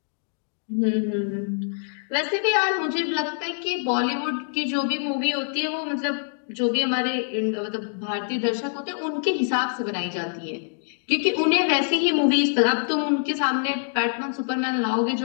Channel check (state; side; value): silent; right; digital silence